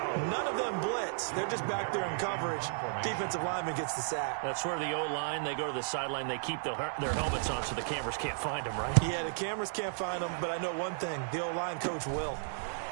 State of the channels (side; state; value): left; silent; 55 dB below the other